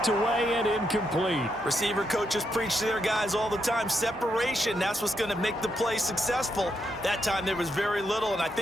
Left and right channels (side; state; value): both; normal; correlation 0.80